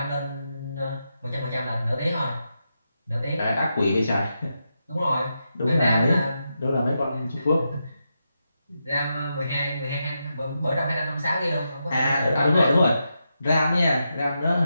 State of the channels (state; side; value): inverted; both; correlation -0.86